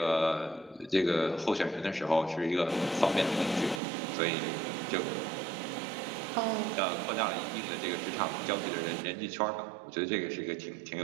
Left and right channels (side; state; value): left; drops out; at 3.8 s